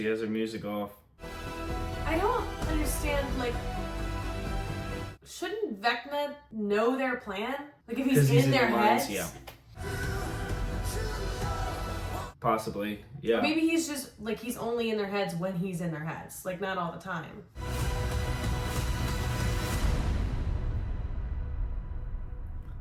has her music off. I don't understand, like, shouldn't Vecna know their plan? Like, if he's in their heads? Yeah. Possibly, yeah. Maybe he's just, like, he's only in their heads when he's in their heads. Like, not all the time.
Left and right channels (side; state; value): both; identical; correlation 1.00